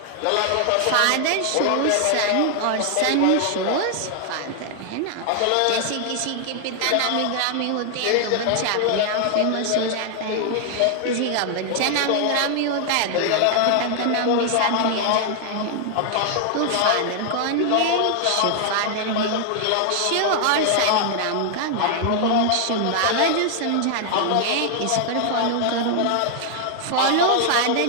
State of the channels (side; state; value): both; different; correlation 0.00